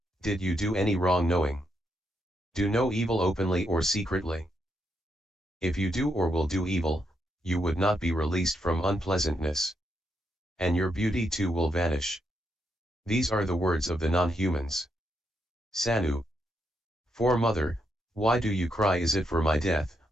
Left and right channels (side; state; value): both; normal; correlation 0.80